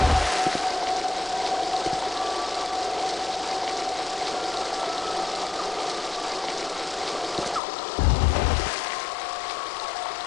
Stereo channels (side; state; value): right; drops out; at 7.6 s